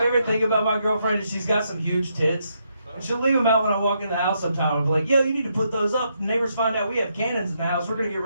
thing about my girlfriend is she's got some huge tits. And she'll leave them out when I walk in the house sometime. I'll be like, yo, you need to put those up. The neighbors find out we have cannons in the house. We're going to get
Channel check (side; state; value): both; inverted; correlation -0.78